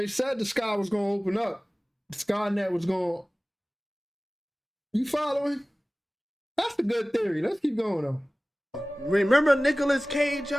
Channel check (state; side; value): normal; both; correlation 0.98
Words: said the sky was going to open up. The Skynet was going to... You following? That's a good theory. Let's keep going, though. Remember Nicolas Cage,